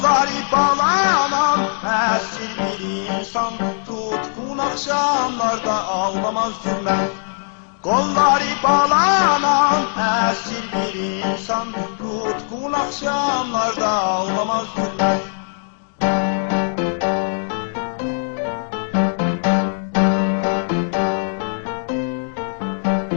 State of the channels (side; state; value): right; silent; digital silence